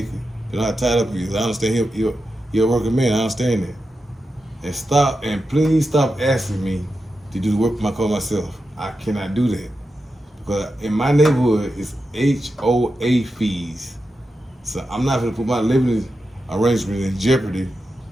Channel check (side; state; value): both; normal; correlation 0.89